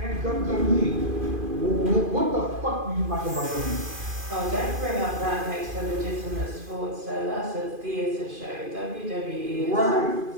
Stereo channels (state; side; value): late; left; 2.5 ms